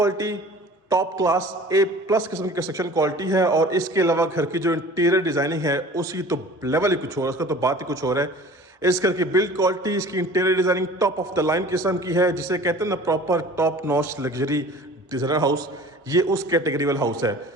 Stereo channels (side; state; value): both; normal; correlation 0.44